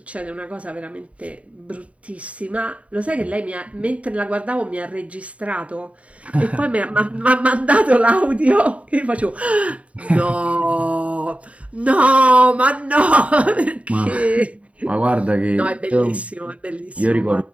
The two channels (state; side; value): late; left; 0.065 ms